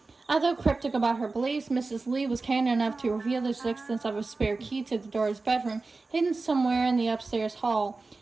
Although cryptic about her beliefs, Mrs. Lee was candid enough to reveal the existence of a spare key to the door's bedroom, hidden somewhere in the upstairs hall.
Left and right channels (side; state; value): left; quieter; 3.7 dB